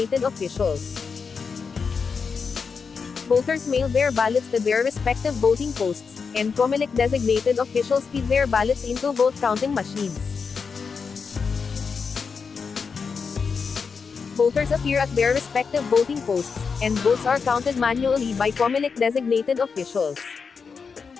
officials. Voters mail their ballots to their respective voting posts, and COMELEC-designated officials feed their ballots into vote-counting machines. Voters appear at their respective voting posts, and votes are counted manually by COMELEC-designated officials.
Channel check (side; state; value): right; quieter; 5.5 dB